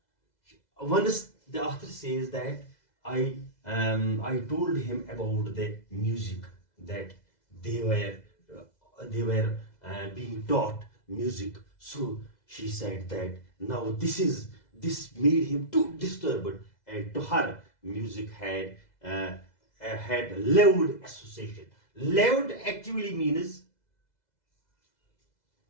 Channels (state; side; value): late; right; 2.0 ms